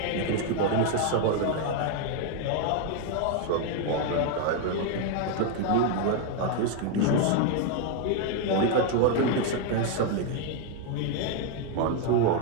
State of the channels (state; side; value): different; both; correlation 0.01